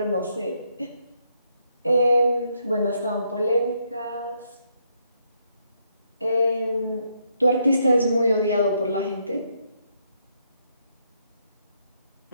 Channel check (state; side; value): inverted; both; correlation -0.75